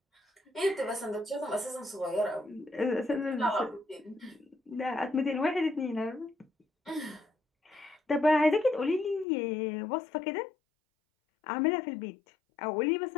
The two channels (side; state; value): right; drops out; at 9.2 s